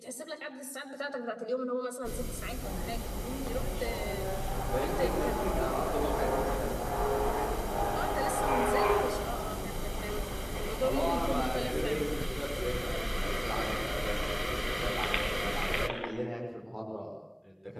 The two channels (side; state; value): both; identical; correlation 1.00